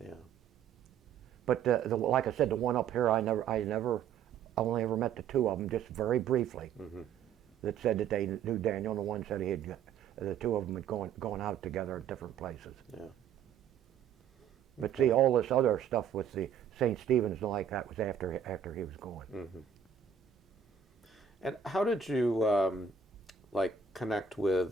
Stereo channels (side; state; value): left; quieter; 7.4 dB